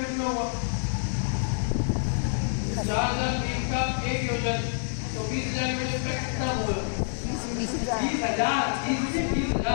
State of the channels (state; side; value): silent; right; digital silence